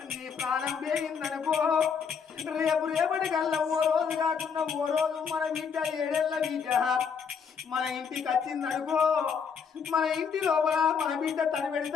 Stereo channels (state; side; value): quieter; right; 6.4 dB